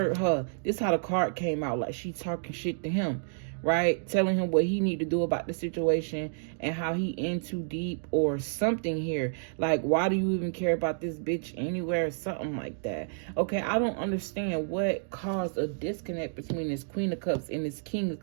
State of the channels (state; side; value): silent; left; digital silence